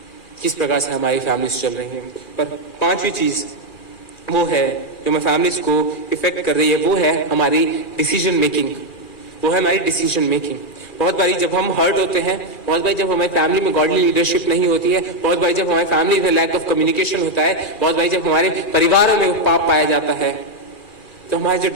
किस प्रकार से हमारी फैमिलीज चल रही हैं? पर 5वीं चीज वो है जो हमारी फैमिलीज को इफेक्ट कर रही है, वो है हमारी डिसीजन मेकिंग। वो है हमारी डिसीजन मेकिंग। बहुत बारी जब हम हर्ट होते हैं, बहुत बारी जब हमारी फैमिली में गॉडली लीडरशिप नहीं होती है, बहुत बारी जब हमारी फैमिली में लैक ऑफ कम्युनिकेशन होता है, बहुत बारी जब हमारे परिवारों में पाप पाया जाता है, तो हमारे जो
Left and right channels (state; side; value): late; right; 2.4 ms